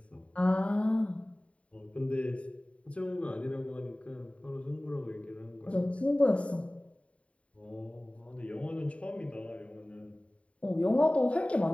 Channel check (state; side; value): late; right; 0.064 ms